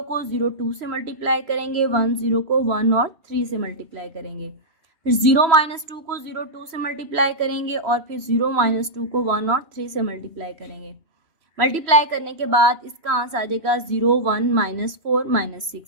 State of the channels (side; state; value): left; late; 3.0 ms